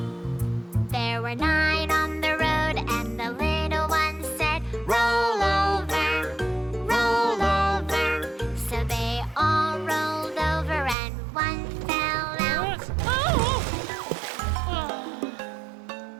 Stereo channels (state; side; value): drops out; left; at 11.0 s